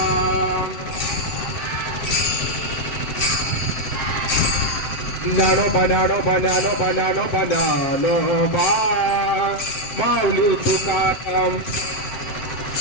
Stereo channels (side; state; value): right; late; 7.5 ms